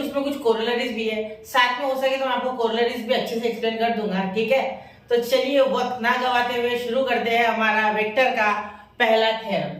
कुछ कोरोलरीज भी है। साथ में हो सके तो मैं आपको कोरोलरीज भी अच्छे से एक्सप्लेन कर दूंगा, ठीक है। तो चलिए वक्त ना गवाते हुए शुरू करते हैं हमारा वेक्टर का पहला थ्योरम,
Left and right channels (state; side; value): identical; both; correlation 1.00